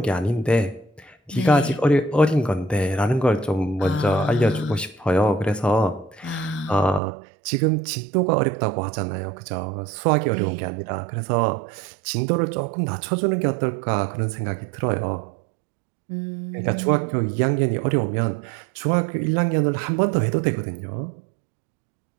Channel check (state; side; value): drops out; left; at 7.0 s